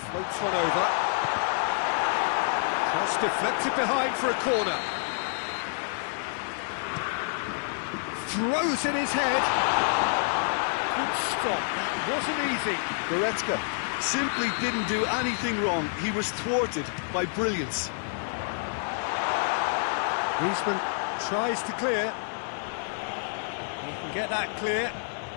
floats one over. Cross deflected behind for a corner. Throws in his head. Good stop, that wasn't easy. Goretzka simply didn't do anything wrong. He was thwarted by brilliance. Griezmann tries to clear. He can get that clear.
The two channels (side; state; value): right; silent; 59 dB below the other